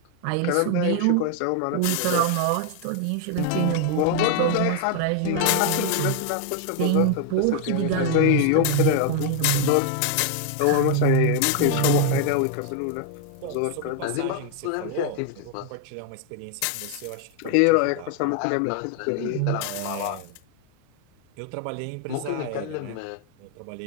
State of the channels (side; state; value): both; different; correlation 0.00